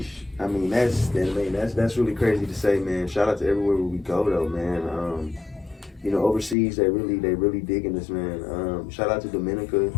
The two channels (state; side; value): drops out; right; at 6.6 s